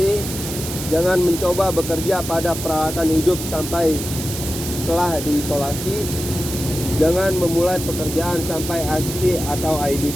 Jangan mencoba bekerja pada peralatan hidup sampai telah diisolasi. Jangan memulai pekerjaan sampai ICC atau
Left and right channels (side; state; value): right; noise; hiss, 7 dB below the sound